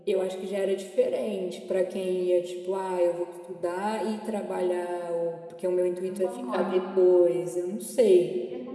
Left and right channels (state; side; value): identical; both; correlation 1.00